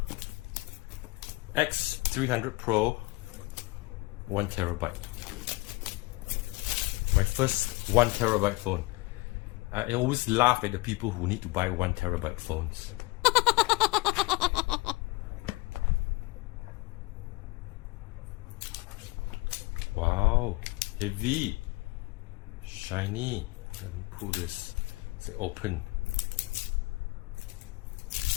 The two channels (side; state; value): right; quieter; 23.9 dB